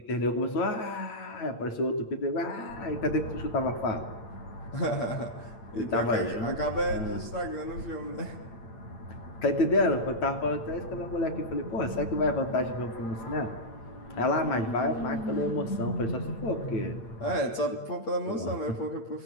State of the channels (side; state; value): right; late; 8.8 ms